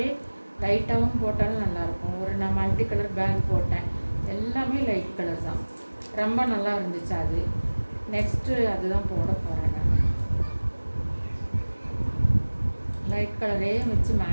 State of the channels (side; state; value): both; inverted; correlation -1.00